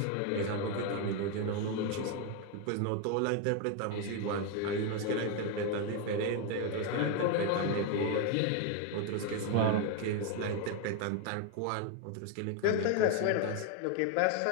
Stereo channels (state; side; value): different; both; correlation 0.01